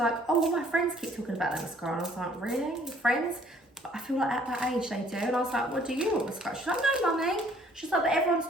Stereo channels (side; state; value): both; normal; correlation 0.60